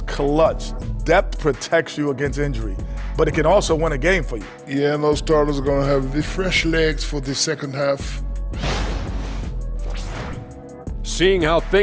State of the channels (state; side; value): identical; both; correlation 1.00